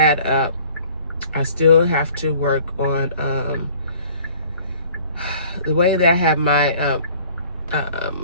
up. I still have to work on the way that I have my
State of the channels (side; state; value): both; inverted; correlation -0.52